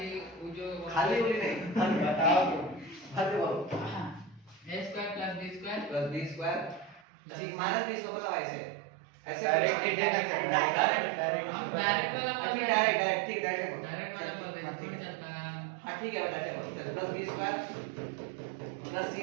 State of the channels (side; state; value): left; drops out; at 7.0 s